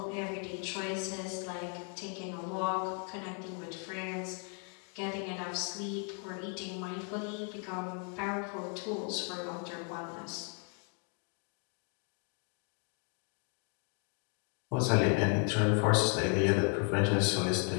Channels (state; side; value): quieter; right; 37.4 dB